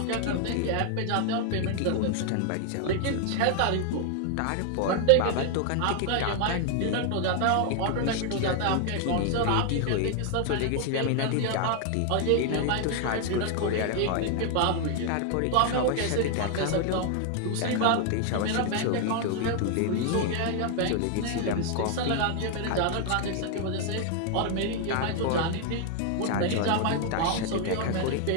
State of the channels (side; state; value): both; different; correlation 0.00